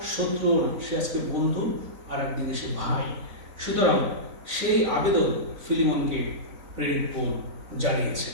শত্রুও না, সে আজকে বন্ধু, আর একদিকে সে ভাই। সুতরাং সেই আবেদন ফিলিমনকে প্রেরিত পৌল জানিয়েছে।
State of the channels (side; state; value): left; late; 3.9 ms